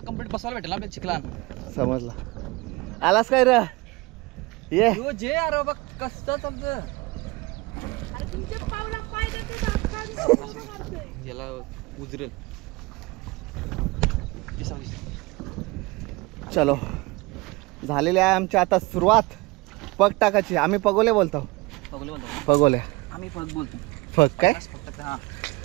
कंप्लीट बसवायला भेटेल आपल्या चिखला. समजला. आलास काय रे? ये यो जे अरे बघ कसं चालतं. अरे तुमच्या पावला पाय देते. याला उजरेल. चलो झालेली आहे आमची आता सुरुवात पग टाकायची. आम्ही पगोले बोलतो. पगले बोलतो पगोले. आम्ही पग बोलतो. पग काय? फक्त हा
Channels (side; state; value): left; quieter; 23.4 dB